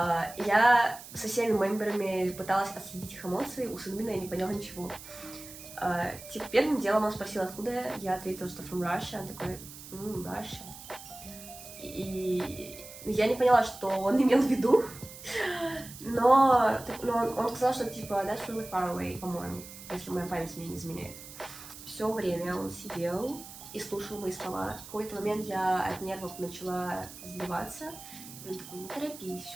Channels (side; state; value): right; noise; hiss, 15 dB below the sound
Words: со всеми мемберами пыталась отследить их эмоции, у Сунмина я не поняла ничего. Типа, первым делом он спросил, откуда я ответила, что from Russia. Он такой, Russia. И я не поняла, что он имел в виду, но он сказал, что типа that's really far away, по-моему, если моя память мне не изменяет. Все время он сидел и слушал мои слова. В какой-то момент я от нервов начала сбиваться. И он такой, не торопись,